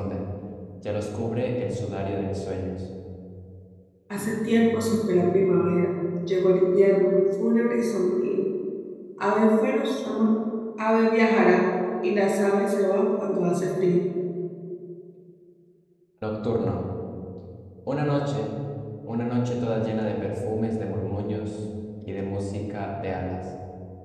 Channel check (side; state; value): both; identical; correlation 1.00